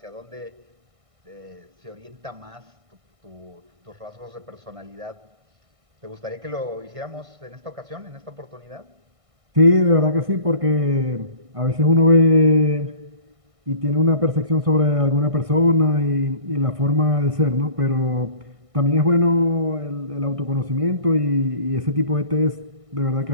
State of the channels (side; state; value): left; late; 1.6 ms